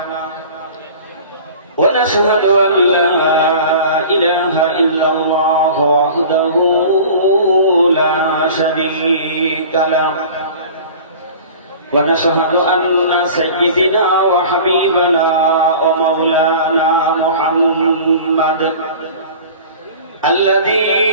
ونشهد أن لا إله إلا الله وحده لا شريك له ونشهد أن سيدنا وحبيبنا ومولانا محمد الذي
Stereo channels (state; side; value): inverted; both; correlation -0.41